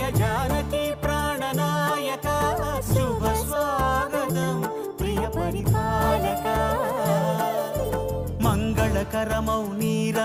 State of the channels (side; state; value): both; identical; correlation 1.00